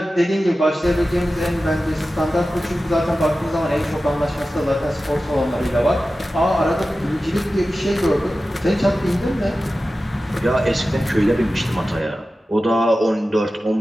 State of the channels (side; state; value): both; normal; correlation 0.94